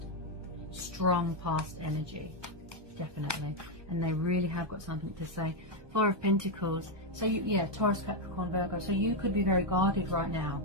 strong past energy, definitely. And they really have got something to say. Four of Pentacles. So you, yeah, Taurus, Capricorn, Virgo. So you could be very guarded right now,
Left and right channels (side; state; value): left; late; 1.2 ms